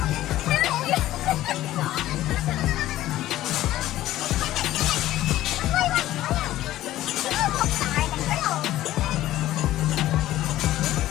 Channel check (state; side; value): quieter; right; 14.6 dB